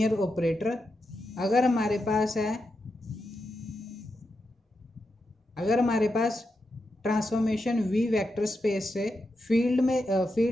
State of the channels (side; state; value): both; normal; correlation 0.87